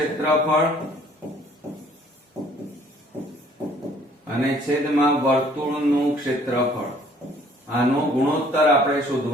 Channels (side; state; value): both; normal; correlation 0.58